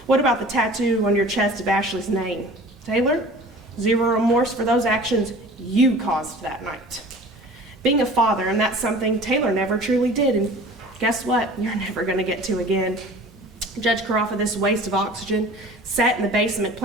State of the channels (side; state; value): both; normal; correlation 0.43